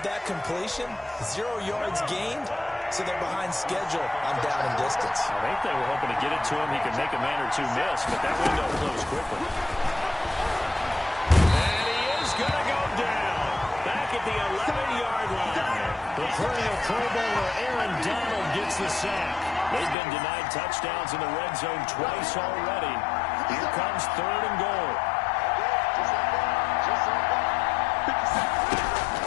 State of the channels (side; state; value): right; drops out; at 20.0 s